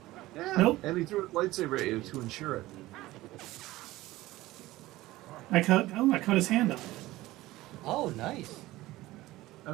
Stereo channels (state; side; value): quieter; left; 17.7 dB